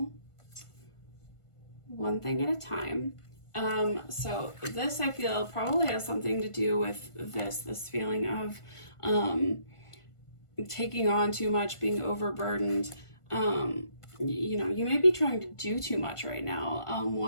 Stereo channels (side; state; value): right; late; 1.5 ms